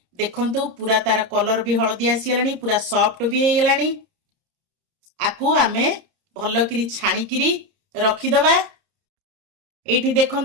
देखंतु पूरा तार कलर भी हळदी आसी गेलानी, पूरा सॉफ्ट भी हे गेलानी। आकू आमे भलो करी छाणी करी रखि दबा। एठी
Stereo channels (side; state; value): left; late; 30 ms